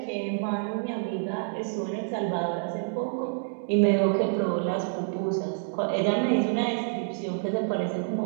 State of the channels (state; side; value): silent; left; digital silence